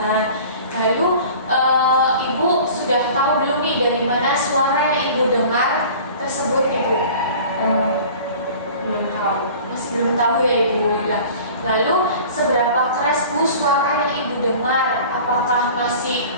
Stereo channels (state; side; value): inverted; both; correlation -0.43